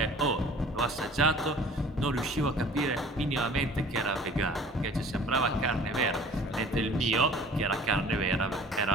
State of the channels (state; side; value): normal; both; correlation 0.48